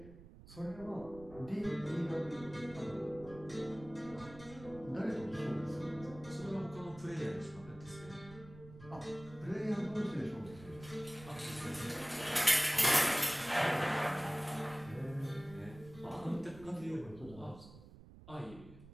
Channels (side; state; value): right; noise; rumble, 18 dB below the sound